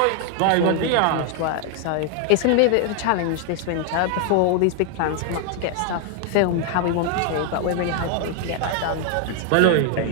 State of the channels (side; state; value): both; different; correlation 0.00